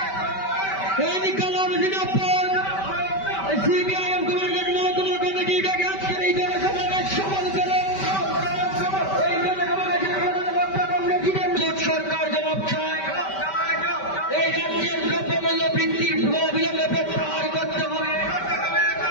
ইনকলাব জিন্দাবাদ। সিপিআইএম কুমারগঞ্জ মহকুমা কমিটিটাকে আজকের এই জনসমাবেশ সফল করে এই জনসমাবেশের প্রধান বক্তা কংগ্রেস সরকার জবাব চায়। এই রাজ্যের দ্রব্যমূল্য বৃদ্ধির অবিলম্বে প্রত্যাহার করতে হবে,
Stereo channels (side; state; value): right; late; 5.2 ms